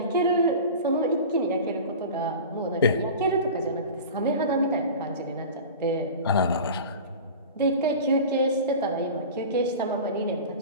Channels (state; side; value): inverted; both; correlation -0.34